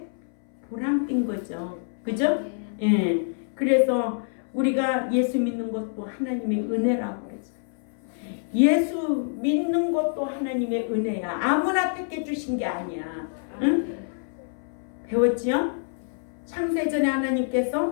보람된 거죠. 그죠? 예. 그래서 우리가 예수 믿는 것도 하나님의 은혜라고 그러죠. 예수 믿는 것도 하나님의 은혜야. 아무나 택해 주신 게 아니야. 응? 배웠지요? 창세전에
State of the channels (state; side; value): silent; right; 61 dB below the other